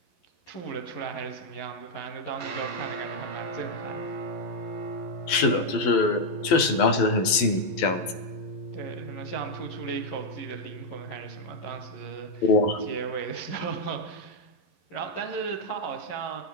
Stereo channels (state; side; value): late; right; 11 ms